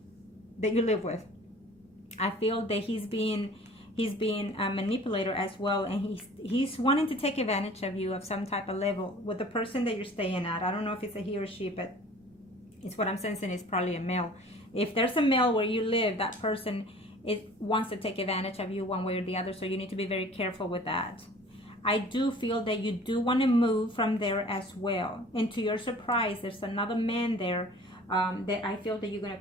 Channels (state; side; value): normal; both; correlation 0.47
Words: you live with. I feel that he's being a manipulator as well, and he's wanting to take advantage of you of some type of level with the person that you're staying at. I don't know if it's a he or she, but it's what I'm sensing is probably a male. If there's a male where you live, that person wants to take advantage of you one way or the other, so you need to be very careful with that. I do feel that you do want to move from there as well. And to your surprise, there's another man there that I feel that you're going to